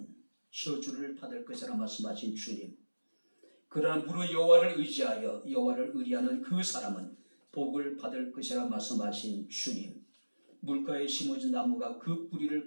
저주를 받을 것이라 말씀하신 주님, 그러나 무릇 여호와를 의지하여 여호와를 의리하는 그 사람은 복을 받을 것이라 말씀하신 주님, 물가에 심어진 나무가 그 뿌리를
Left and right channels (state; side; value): inverted; both; correlation -1.00